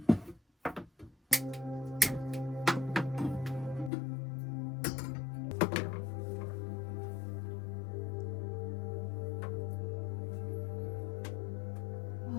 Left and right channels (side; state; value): right; drops out; at 3.9 s